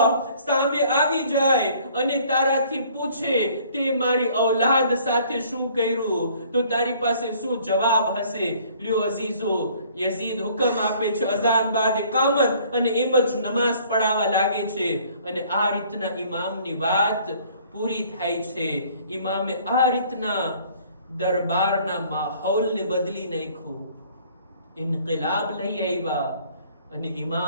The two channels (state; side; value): inverted; both; correlation -0.57